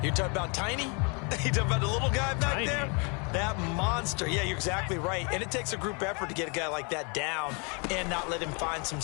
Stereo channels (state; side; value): quieter; right; 33.6 dB